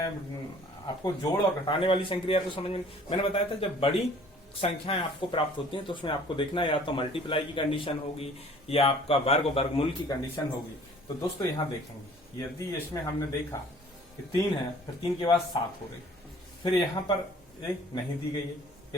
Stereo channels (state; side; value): normal; both; correlation 0.52